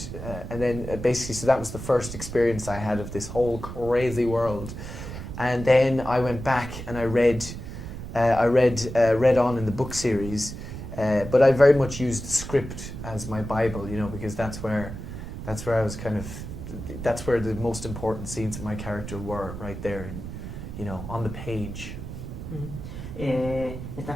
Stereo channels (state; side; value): noise; right; rumble, 9 dB below the sound